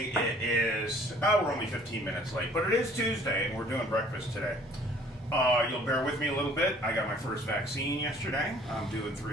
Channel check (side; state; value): both; normal; correlation 0.55